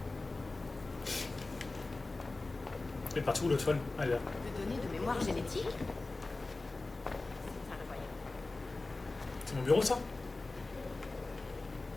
Elle est partout l'autre folle. Allez là. Des données de mémoire génétique? C'est mon bureau ça?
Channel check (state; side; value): quieter; right; 3.3 dB